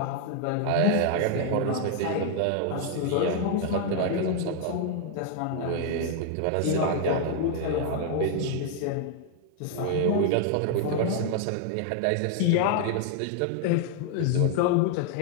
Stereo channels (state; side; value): different; both; correlation 0.00